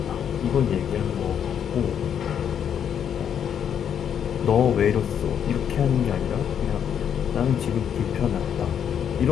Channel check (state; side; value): quieter; right; 8.6 dB